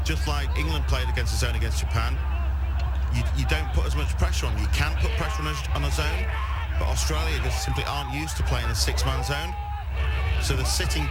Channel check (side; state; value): both; identical; correlation 1.00